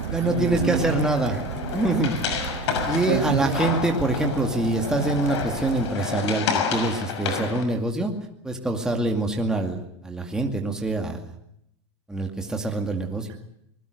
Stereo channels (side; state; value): both; normal; correlation 0.42